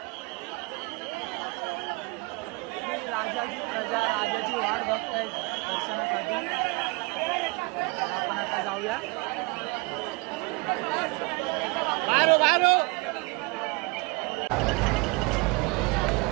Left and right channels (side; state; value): left; quieter; 27.4 dB